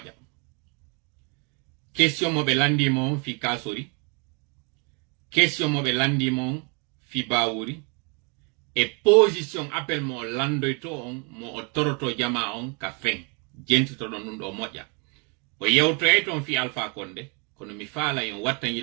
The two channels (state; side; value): quieter; left; 34.2 dB